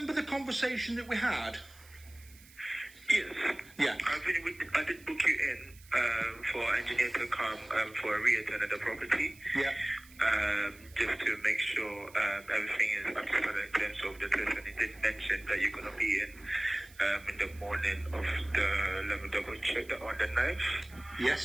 the conversation that we had? Yes. Yeah. I did book you in for engineer to come for a re-attend at the property. Yeah. Just to make sure everything is up to standard in terms of the test. And he did mention that you're going to be in the morning of the, let me double check that, on the 9th.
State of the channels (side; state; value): right; noise; hiss, 23 dB below the sound